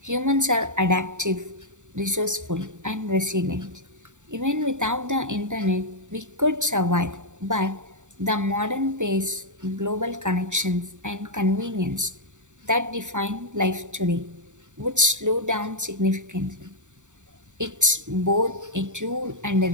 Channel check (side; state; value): left; late; 0.85 ms